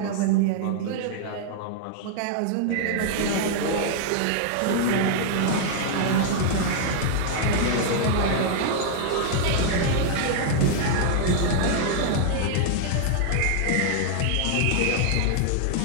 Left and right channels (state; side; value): different; both; correlation -0.01